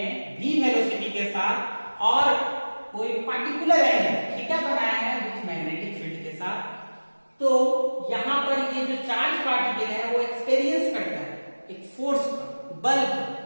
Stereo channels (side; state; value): both; inverted; correlation -1.00